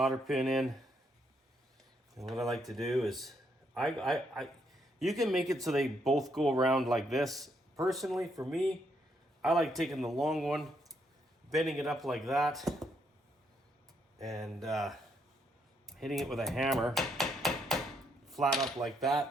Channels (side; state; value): both; normal; correlation 0.75